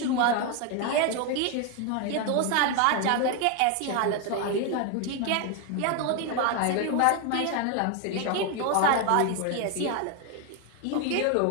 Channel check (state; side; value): different; both; correlation 0.01